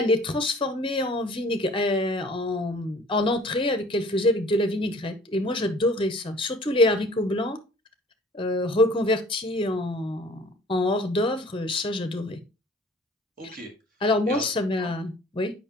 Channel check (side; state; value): both; normal; correlation 0.51